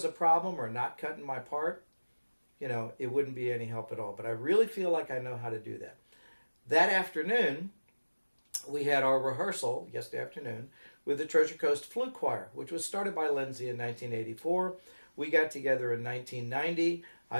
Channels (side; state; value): both; inverted; correlation -1.00